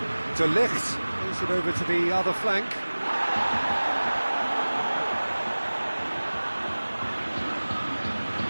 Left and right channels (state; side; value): inverted; both; correlation -1.00